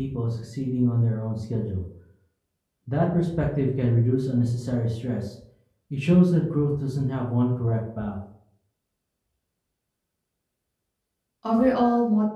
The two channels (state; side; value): identical; both; correlation 1.00